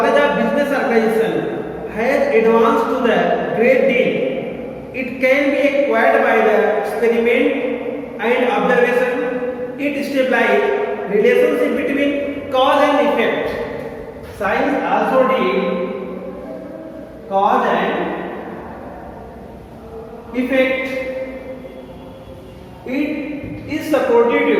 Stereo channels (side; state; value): both; identical; correlation 1.00